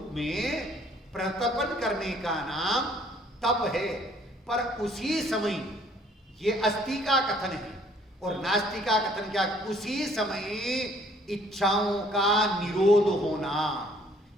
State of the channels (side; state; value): both; normal; correlation 0.60